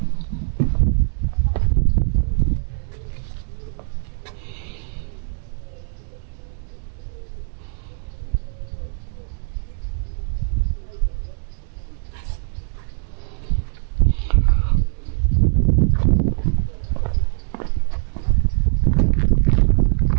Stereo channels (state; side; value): silent; left; 65 dB below the other